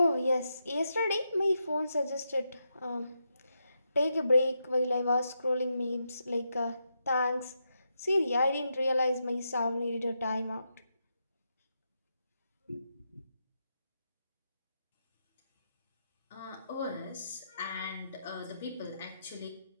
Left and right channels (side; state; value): both; inverted; correlation -0.84